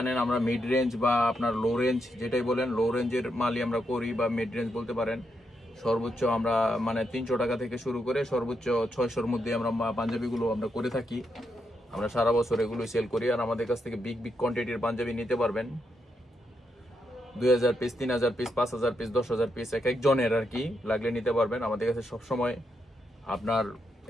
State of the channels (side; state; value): both; normal; correlation 0.82